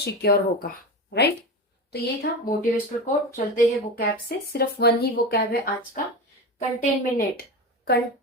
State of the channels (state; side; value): normal; both; correlation 0.24